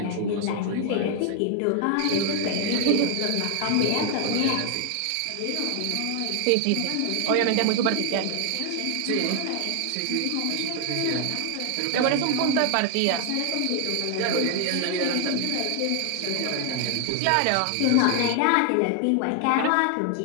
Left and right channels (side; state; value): both; different; correlation 0.00